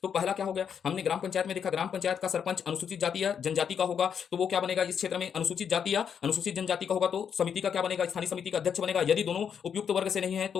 तो पहला क्या हो गया? हमने ग्राम पंचायत में देखा, ग्राम पंचायत का सरपंच अनुसूचित जाति या जनजाति का होगा, तो वो क्या बनेगा? इस क्षेत्र में अनुसूचित जाति या अनुसूचित जनजाति का होगा तो समिति का क्या बनेगा? स्थानीय समिति का अध्यक्ष बनेगा। यदि दोनों उपयुक्त वर्ग से नहीं है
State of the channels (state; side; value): quieter; right; 7.6 dB